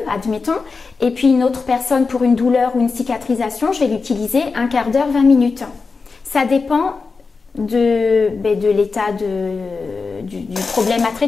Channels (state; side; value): quieter; right; 4.5 dB